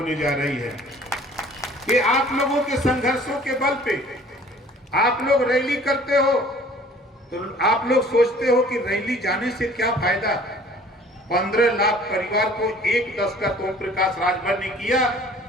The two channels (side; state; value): both; normal; correlation 0.52